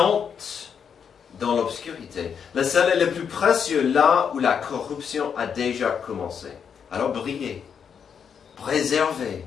dans l'obscurité. Le sel est le plus précieux là où la corruption a déjà commencé. Alors brillez, préservez,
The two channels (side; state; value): right; quieter; 7.2 dB